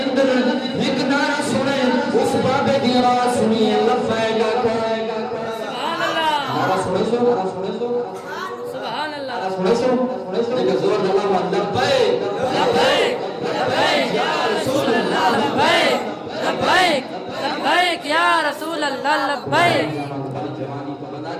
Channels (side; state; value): both; identical; correlation 1.00